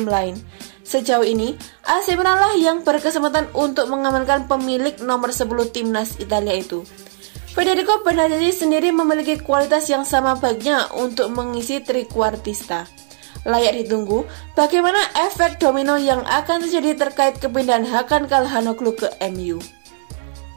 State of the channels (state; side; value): silent; left; digital silence